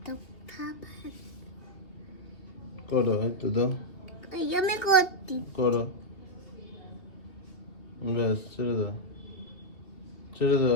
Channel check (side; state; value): right; late; 3.0 ms